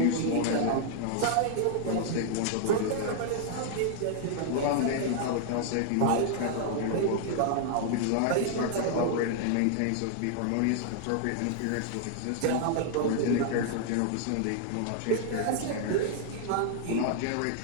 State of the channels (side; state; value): both; different; correlation -0.01